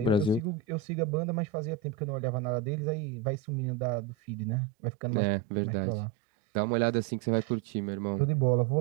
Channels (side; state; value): left; drops out; at 4.6 s